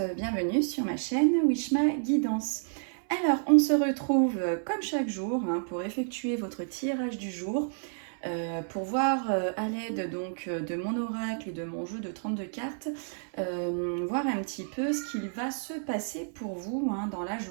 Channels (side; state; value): left; silent; 58 dB below the other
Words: bienvenue sur ma chaîne Wishma Guidance. Alors, on se retrouve comme chaque jour pour effectuer votre tirage du jour, pour voir à l'aide donc de mon oracle et de mon jeu de 32 cartes, voir un petit peu ce qu'il va se passer pour vous dans la